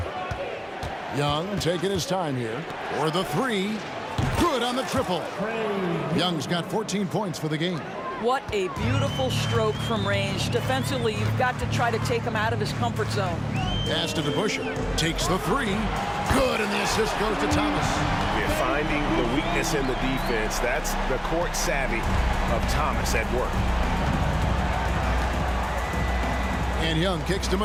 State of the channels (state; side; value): identical; both; correlation 1.00